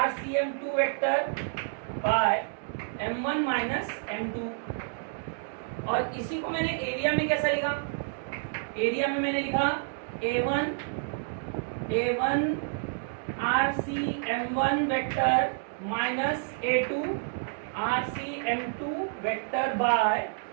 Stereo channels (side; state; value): left; silent; digital silence